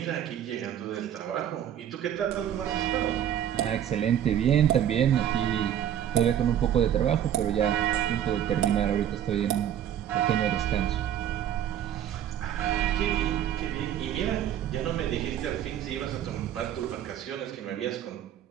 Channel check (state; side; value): quieter; left; 10.4 dB